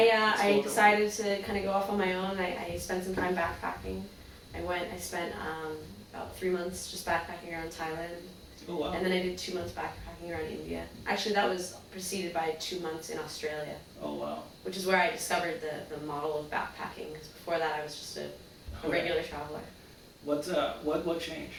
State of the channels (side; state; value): both; identical; correlation 1.00